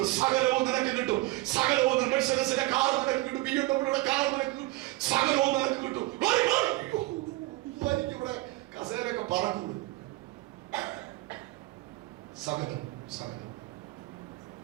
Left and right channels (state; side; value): quieter; left; 20.2 dB